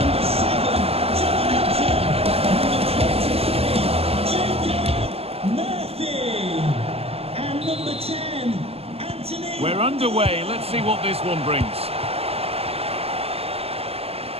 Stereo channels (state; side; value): late; left; 0.29 ms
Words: We're underway. Let's see what this one brings.